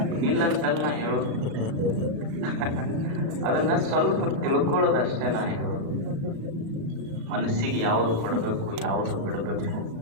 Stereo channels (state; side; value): late; left; 36 ms